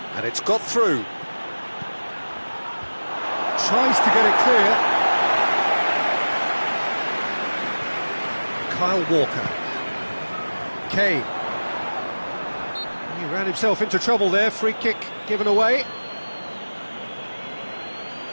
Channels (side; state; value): both; inverted; correlation -1.00